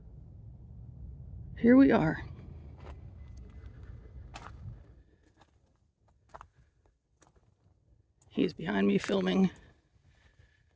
here we are. He's behind me filming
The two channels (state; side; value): identical; both; correlation 1.00